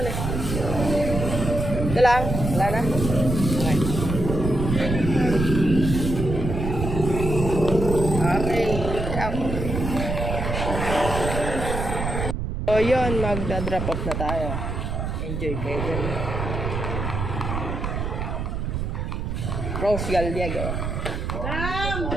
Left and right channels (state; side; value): noise; right; rumble, 3 dB below the sound